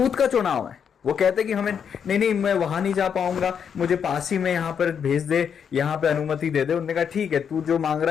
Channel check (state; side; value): quieter; right; 7.4 dB